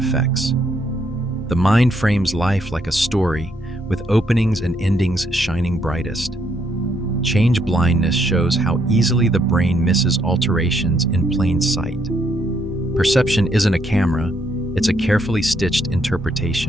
The mind frames life like a story, with openings and endings shining brightest. Change blindness shows how easily the brain misses alterations in plain sight. Perception isn't a camera, it's a carefully stitched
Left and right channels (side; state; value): both; normal; correlation 0.73